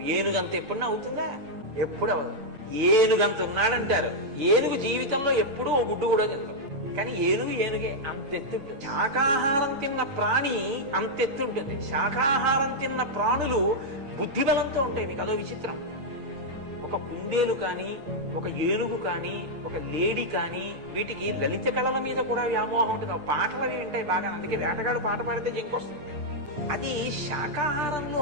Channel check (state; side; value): late; left; 9.0 ms